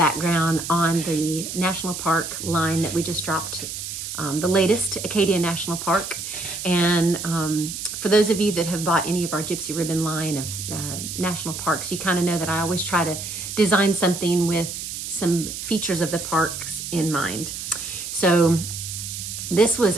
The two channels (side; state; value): right; noise; hiss, 7 dB below the sound